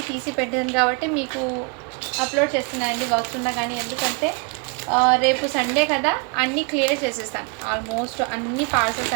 తీసి పెట్టాను కాబట్టి మీకు అప్లోడ్ చేస్తున్నానండి వర్క్స్ ఉన్నా కానీ. ఎందుకంటే రేపు సండే కదా, అన్నీ క్లియర్ చేసేస్తాను. ఆల్మోస్ట్ అన్ని పార్సల్స్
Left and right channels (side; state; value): left; quieter; 33.1 dB